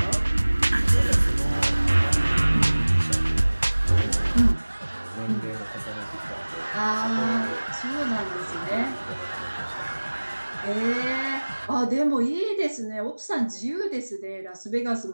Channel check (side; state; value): both; inverted; correlation -1.00